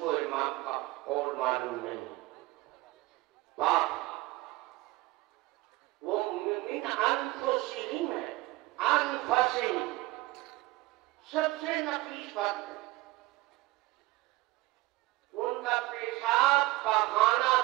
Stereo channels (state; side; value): quieter; left; 20.0 dB